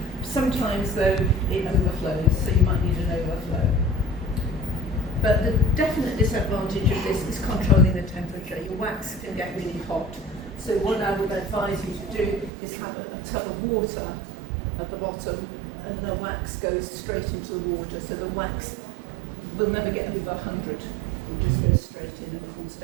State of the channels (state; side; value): drops out; left; at 12.5 s